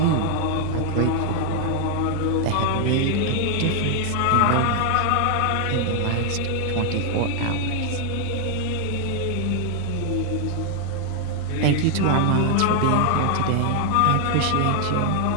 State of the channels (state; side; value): different; both; correlation 0.00